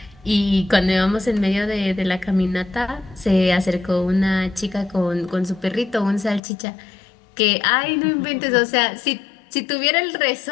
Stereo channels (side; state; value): right; drops out; at 6.4 s